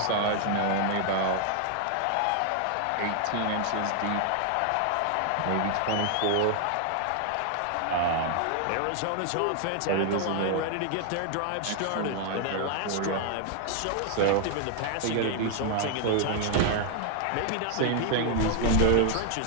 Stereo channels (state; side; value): different; both; correlation 0.00